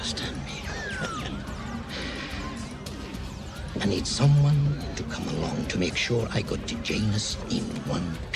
me. I need someone to come along to make sure I got to Janus in one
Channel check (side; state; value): both; identical; correlation 1.00